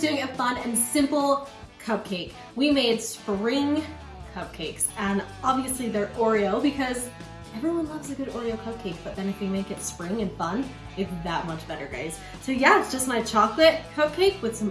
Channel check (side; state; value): both; identical; correlation 1.00